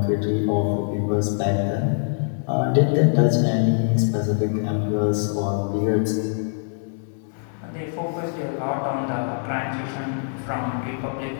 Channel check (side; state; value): right; silent; 63 dB below the other